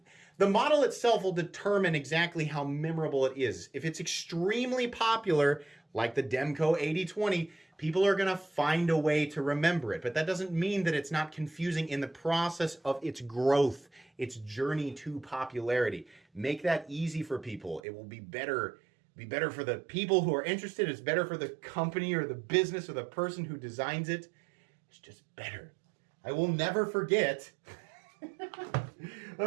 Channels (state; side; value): drops out; left; at 17.8 s